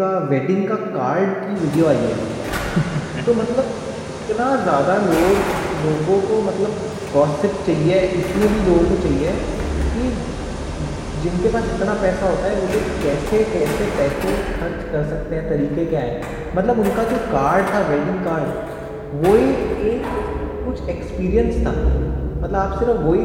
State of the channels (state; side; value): identical; both; correlation 1.00